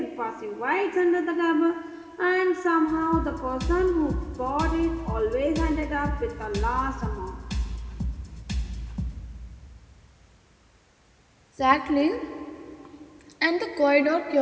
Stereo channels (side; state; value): both; identical; correlation 1.00